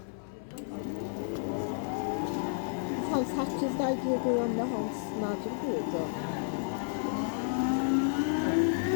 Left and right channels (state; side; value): silent; right; 57 dB below the other